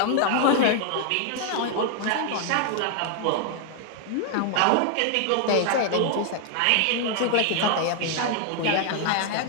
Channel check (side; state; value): both; different; correlation 0.00